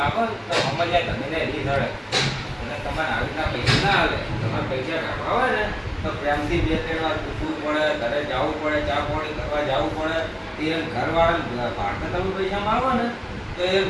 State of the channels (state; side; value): identical; both; correlation 1.00